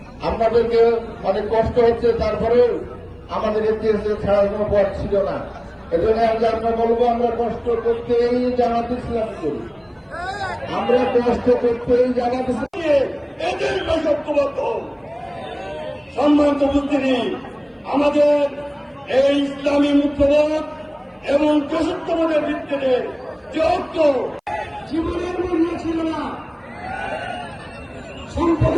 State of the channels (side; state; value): both; identical; correlation 1.00